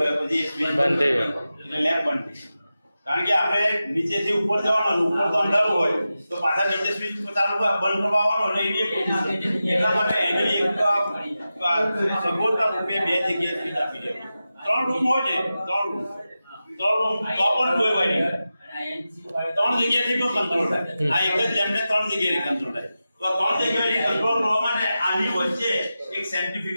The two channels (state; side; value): inverted; both; correlation -0.93